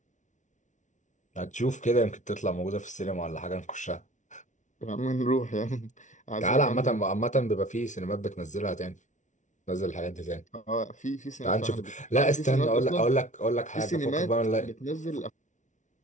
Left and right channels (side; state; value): right; late; 0.36 ms